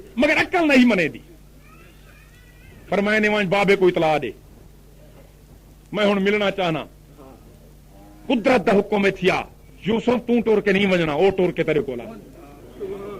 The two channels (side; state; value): both; identical; correlation 1.00